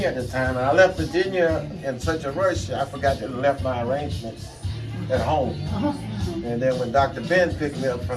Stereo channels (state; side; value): identical; both; correlation 1.00